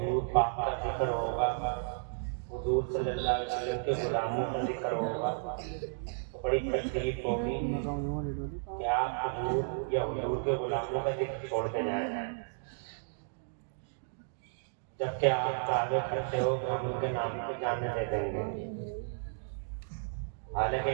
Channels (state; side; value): silent; left; digital silence